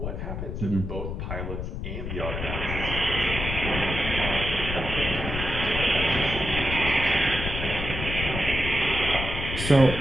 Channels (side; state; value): left; noise; rumble, 5 dB below the sound